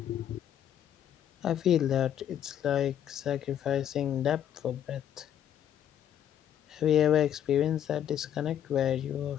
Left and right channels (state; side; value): quieter; right; 10.1 dB